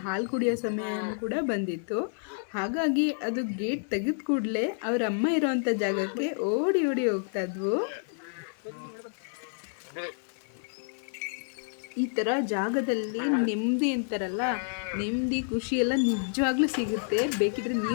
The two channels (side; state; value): right; silent; 58 dB below the other